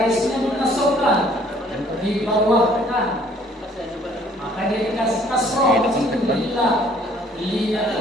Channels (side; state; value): both; normal; correlation 0.58